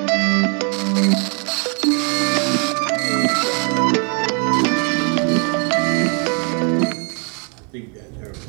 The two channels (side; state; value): left; quieter; 37.3 dB